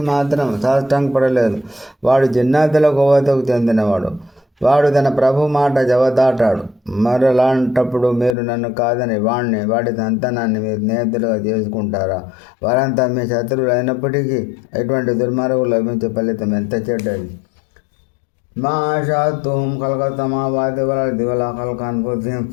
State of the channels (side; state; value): right; drops out; at 8.3 s